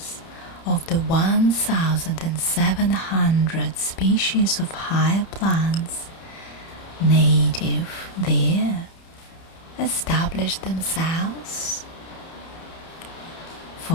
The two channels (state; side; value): late; right; 30 ms